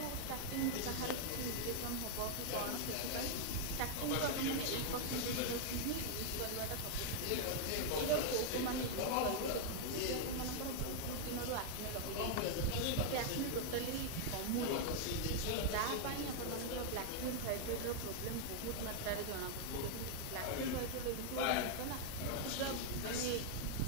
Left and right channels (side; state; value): both; different; correlation 0.00